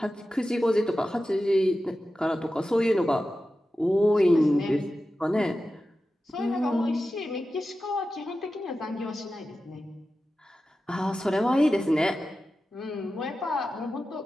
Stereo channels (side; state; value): both; normal; correlation 0.93